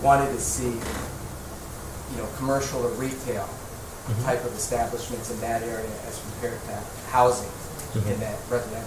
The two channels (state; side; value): identical; both; correlation 1.00